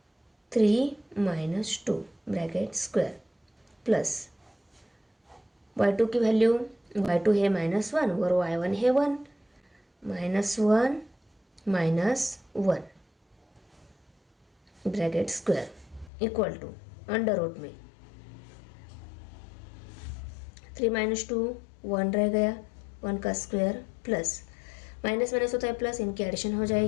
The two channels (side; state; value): right; drops out; at 16.1 s